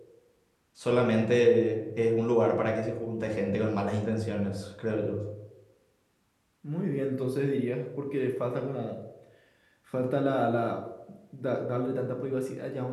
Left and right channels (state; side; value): identical; both; correlation 1.00